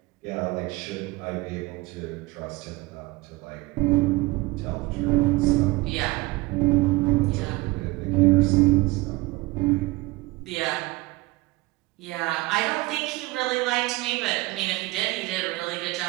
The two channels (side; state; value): left; quieter; 22.0 dB